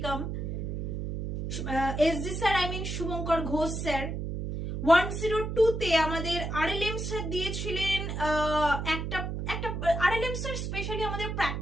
SG sir Shubhankar Ghosh sir. 102তে আমাদের আরএলএম স্যার দিয়েছিলেন একটা আরএলএম স্যার স্পেশালি আমাদের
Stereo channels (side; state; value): right; noise; hum, 4 dB below the sound